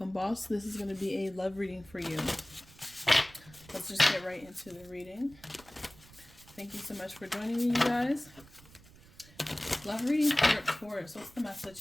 boss. This is going to be a love reading for you. Let's just get right into the reading. Thank you so much for joining me, you guys. Love reading for Taurus. What's the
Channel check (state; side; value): noise; right; rumble, 23 dB below the sound